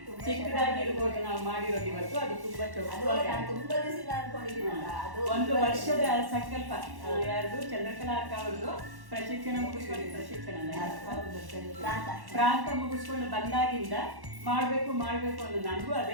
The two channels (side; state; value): left; late; 1.1 ms